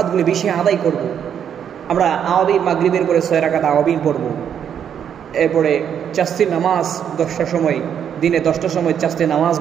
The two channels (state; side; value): quieter; left; 8.6 dB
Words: বেশি আদায় করব। আমরা আওয়াবিন, মাগরিবের পরে 6 রাকাত আওয়াবিন পড়ব, এরপরে চাস্তির নামাজ 10টার সময়, দিনে 10টার সময় চাস্তির